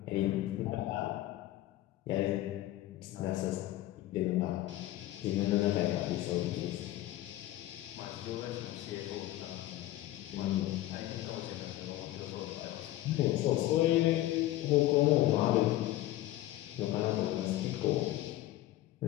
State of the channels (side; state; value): right; quieter; 15.2 dB